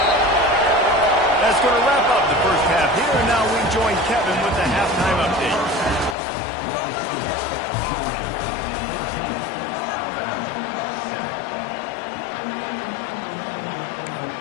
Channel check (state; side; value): drops out; right; at 6.2 s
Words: That's going to wrap up the first half here, and now we join Kevin with the halftime update.